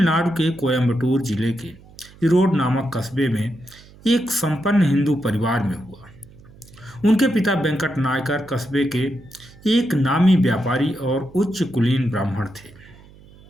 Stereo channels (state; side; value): noise; right; hum, 23 dB below the sound